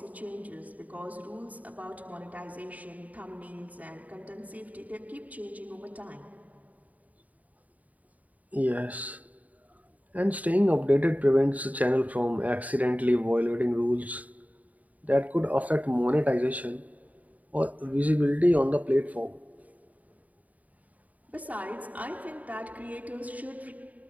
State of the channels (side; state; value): left; late; 0.073 ms